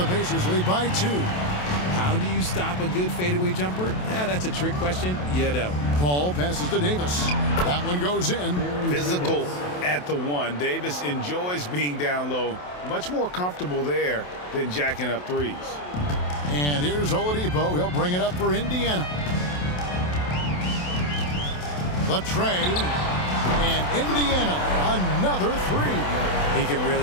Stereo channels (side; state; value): right; late; 28 ms